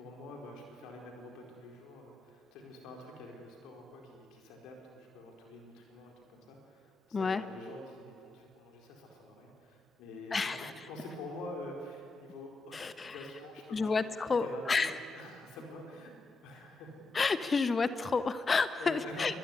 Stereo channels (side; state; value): right; quieter; 3.8 dB